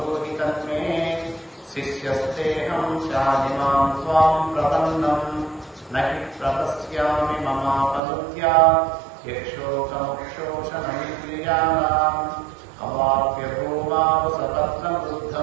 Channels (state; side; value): drops out; left; at 8.0 s